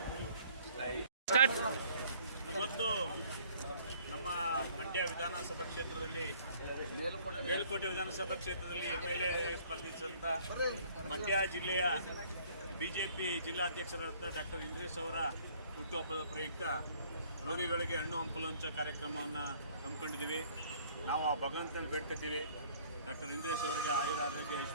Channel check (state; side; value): inverted; both; correlation -0.57